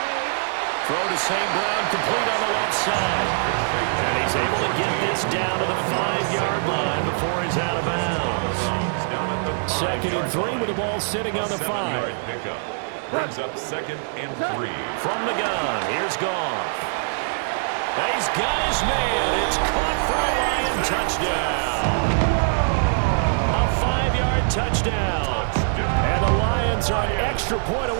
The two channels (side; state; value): left; silent; digital silence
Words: Throw to St. Brown, complete on the left side. And he's able to get this down to the 5-yard line before he's out of bounds. Second and 3 with the ball sitting on the 5. Brings up second and 3. From the gun, here's Goff. He's got his man. It's caught for a Lion touchdown. A 5-yard touchdown. And the Lions Lions are an extra point